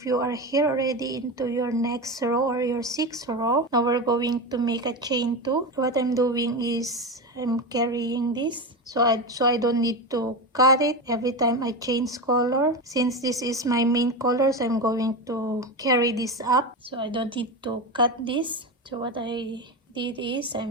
you are here already into your next row or your 6th row, now we're going to make a chain 2. So what I'm doing is I'm carrying this, so I don't need to cut it every time I change color. Since this is my main color, so I'm going to carry this up, so I don't need to cut this. So what I did is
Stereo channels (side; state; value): both; normal; correlation 0.18